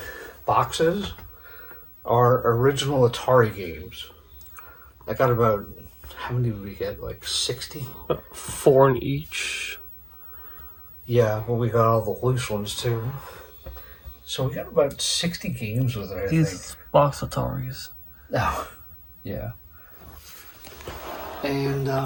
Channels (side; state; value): both; identical; correlation 1.00